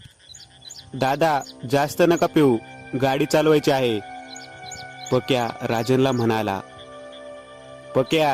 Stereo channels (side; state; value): both; identical; correlation 1.00